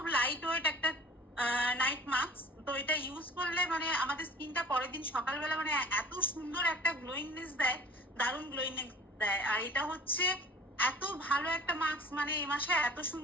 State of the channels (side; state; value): both; normal; correlation 0.46